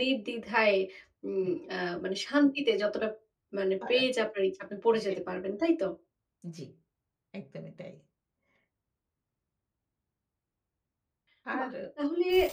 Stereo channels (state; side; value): identical; both; correlation 1.00